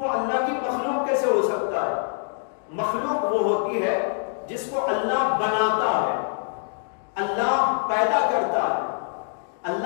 اللہ کی مخلوق کیسے ہو سکتا ہے؟ مخلوق وہ ہوتی ہے جس کو اللہ بناتا ہے، اللہ پیدا کرتا ہے۔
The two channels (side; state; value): right; silent; digital silence